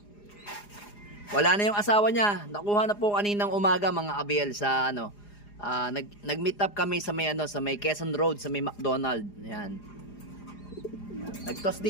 Wala na yung asawa niya, nakuha na po kaninang umaga mga abel sa nag-meet up kami sa may Quezon Road sa may McDonald. Ayan. Nag-toast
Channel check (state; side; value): late; right; 4.9 ms